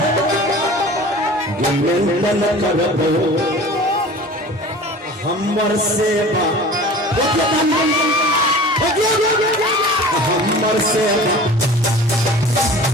गिनन करबो हमर सेवा हमर सेवा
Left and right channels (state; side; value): normal; both; correlation 0.41